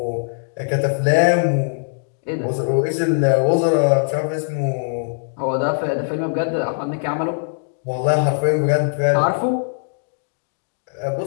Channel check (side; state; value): right; silent; digital silence